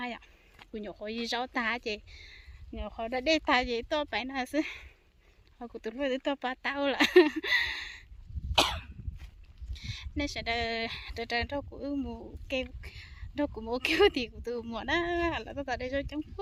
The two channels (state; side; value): identical; both; correlation 1.00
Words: ạ, cũng nhiều khối giáo ta chị nhiều khối đã để ta gì tôi phải là chứ họ của tôi với tôi ba tao là nên sẽ đợi đâu cũng mua kêu đâu cũng mua kêu thì của tôi mua đó là tôi tại đây cho chẳng